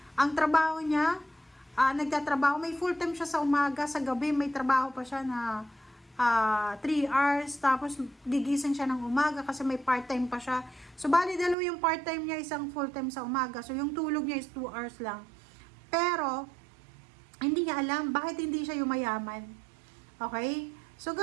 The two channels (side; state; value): left; drops out; at 11.6 s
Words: Ang trabaho niya, nagtatrabaho, may full time siya sa umaga, sa gabi may trabaho pa siya na 3 hours, tapos gigising siya ng umaga kasi may part-time pa siya. So, bali dalawa yung part-time niya, isang full-time sa umaga. So, yung tulog niya is 2 hours lang. Pero, hindi niya alam bakit hindi siya yumayaman. Okay? So,